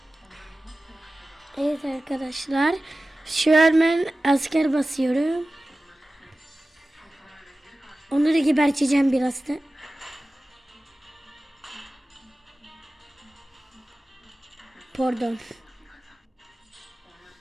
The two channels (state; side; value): normal; both; correlation 0.96